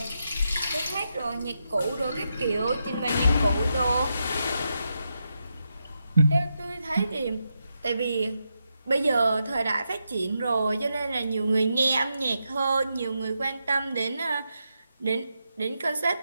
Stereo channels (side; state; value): both; inverted; correlation -0.85